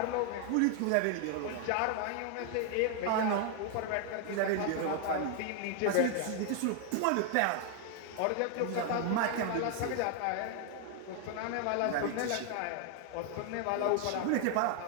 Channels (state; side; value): different; both; correlation 0.00